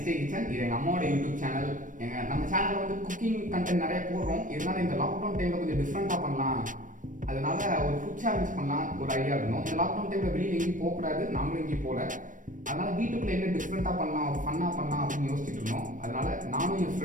டே கிச்சன். இது எங்கள் அம்மாவோட யூடியூப் சேனல். நம்ம சேனலில் வந்து குக்கிங் கண்டென்ட் நிறைய போடுறோம். இருந்தாலும் இந்த லாக்டவுன் டைமில் கொஞ்சம் டிஃப்ரெண்ட்டாக பண்ணலாம், அதனால ஒரு ஃபுட் சேலஞ்ச் பண்ணலாம் ஒரு ஐடியா இருந்தோம். இந்த லாக்டவுன் டைமில் வெளியில் எங்கேயும் போகக்கூடாது, நாங்களும் எங்கேயும் போகல. அதனால வீட்டுக்குள்ளே என்ன டிஃப்ரெண்ட்டாக பண்ணலாம், ஒரு ஃபன்னாக பண்ணலாம் அப்படின்னு யோசிச்சுட்டு இருந்தோம். அதனால நானும் என்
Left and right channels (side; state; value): left; late; 0.38 ms